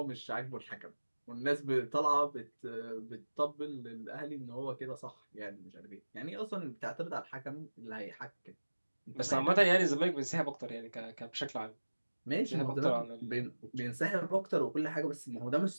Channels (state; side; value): inverted; both; correlation -1.00